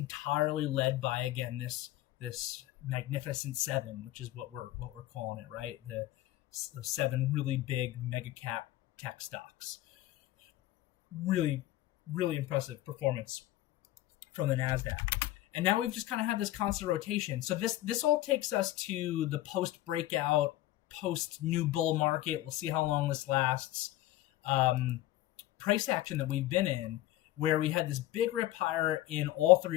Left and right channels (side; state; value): right; quieter; 15.4 dB